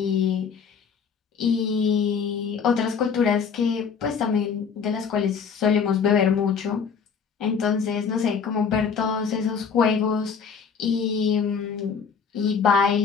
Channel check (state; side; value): quieter; right; 6.2 dB